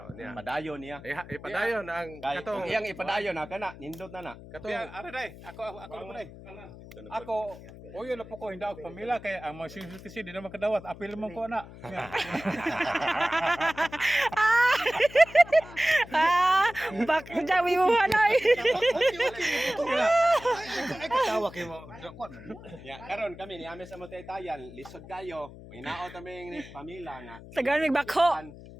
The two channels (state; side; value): noise; left; hum, 16 dB below the sound